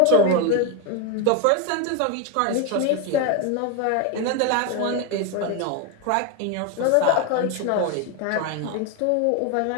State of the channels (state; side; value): different; both; correlation 0.02